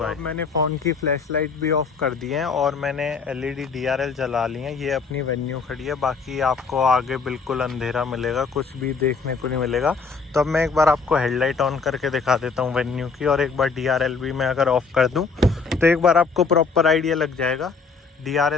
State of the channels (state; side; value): quieter; right; 4.9 dB